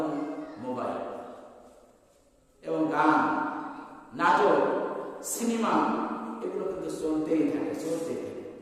মোবাইল, এবং গান, নাটক, সিনেমা, এগুলো কিন্তু চলতেই থাকে।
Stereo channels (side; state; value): both; identical; correlation 1.00